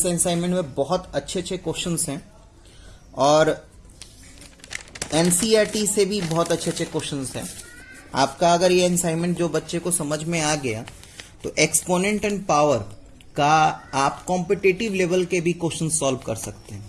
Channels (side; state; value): both; identical; correlation 1.00